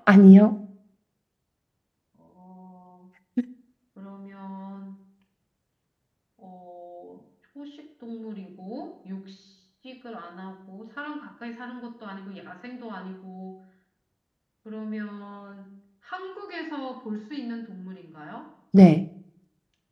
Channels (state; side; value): identical; both; correlation 1.00